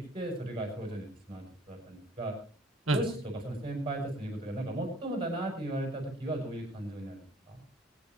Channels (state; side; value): normal; both; correlation 0.56